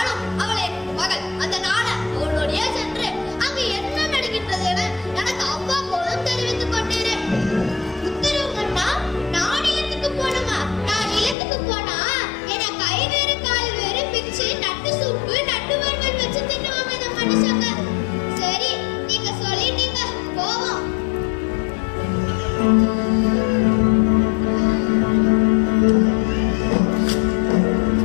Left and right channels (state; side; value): drops out; right; at 11.4 s